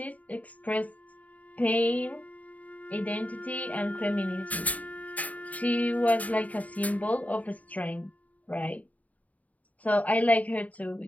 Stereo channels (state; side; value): late; right; 0.072 ms